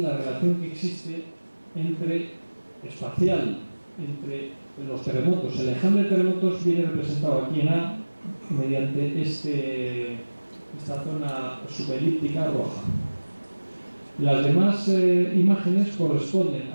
la relación que existe espacial entre los terremotos. El enjambre de terremotos viene representado aquí en A mediante esta zona subelíptica roja. Las demás imágenes corresponden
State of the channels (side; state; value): both; inverted; correlation -1.00